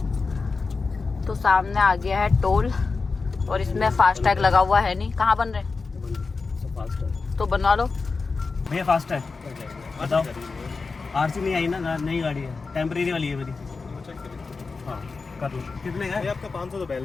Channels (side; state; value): right; quieter; 4.3 dB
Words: तो सामने आ गया है टोल और इसमें फास्टैग लगा हुआ है नहीं। कहाँ बन रहे? तो बनवा लो भैया। फास्ट है, बताओ। आरसी नहीं आई ना, नई गाड़ी है, टेम्परेरी वाली है मेरी। हाँ कर लो। कितने का? आपका 500 तो